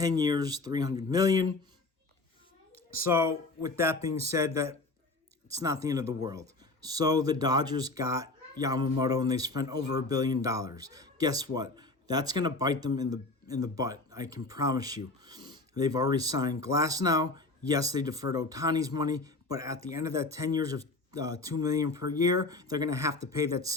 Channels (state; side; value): quieter; right; 3.2 dB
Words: years, $300 million. So with that being said, that it's not the end of the world. So the Dodgers got Yamamoto and they spent over $1 billion. Guess what? That's going to bite them in the butt. I can promise you. They've already signed Glasnow. Yes, they deferred Ohtani's money, but at the end of that 10 years of $2 million per year, they're going to have to pay that